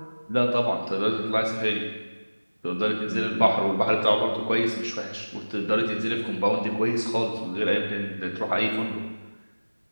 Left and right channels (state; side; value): inverted; both; correlation -1.00